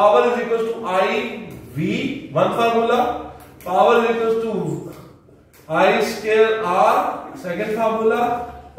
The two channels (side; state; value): both; identical; correlation 1.00